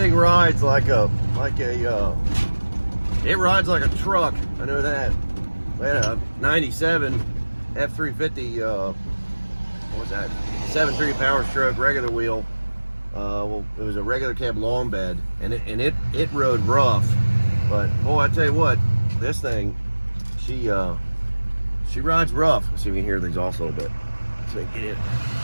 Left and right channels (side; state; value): both; inverted; correlation -1.00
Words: rides like a it rides like a truck. I know that. We had a 97 F350. What was that? 7.3 power stroke, regular wheel. Well, it was a regular cab long bed, and it rode rough. But boy, I tell you what, this thing, she rides rough. Let's see if we can hear the exhaust a little bit. So we can get it.